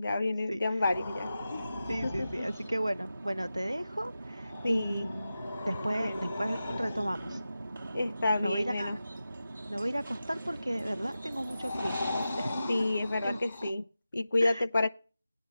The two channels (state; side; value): inverted; both; correlation -0.93